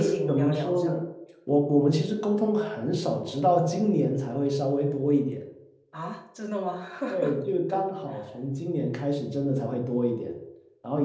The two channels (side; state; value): both; identical; correlation 1.00